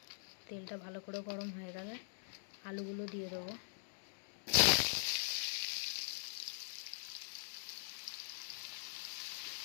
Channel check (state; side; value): silent; right; digital silence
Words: তেলটা ভালো করে গরম হয়ে গেলে আলুগুলো দিয়ে দেবো।